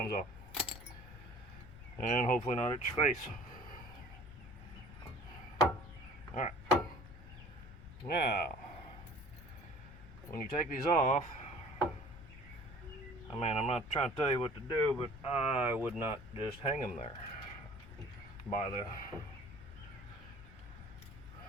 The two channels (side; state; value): left; noise; rumble, 15 dB below the sound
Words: off. And hopefully not at your face. Alright. Now, when you take these off, I mean, I'm not trying to tell you what to do, but I would not just hang them there by the